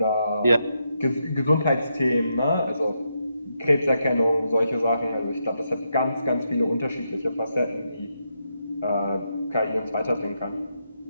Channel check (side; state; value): both; inverted; correlation -0.82